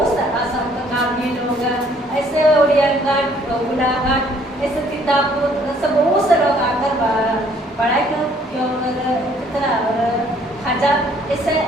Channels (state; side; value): normal; both; correlation 0.61